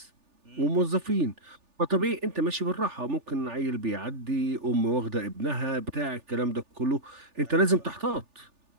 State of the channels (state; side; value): late; left; 3.4 ms